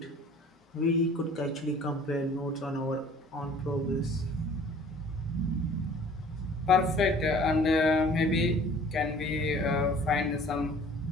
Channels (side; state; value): both; normal; correlation 0.50